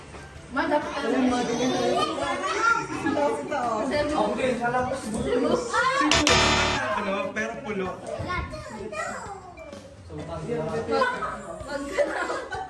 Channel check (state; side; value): identical; both; correlation 1.00